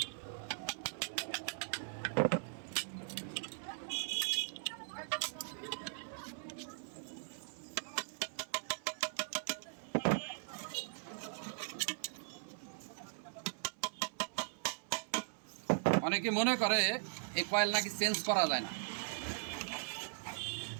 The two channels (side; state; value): left; silent; 51 dB below the other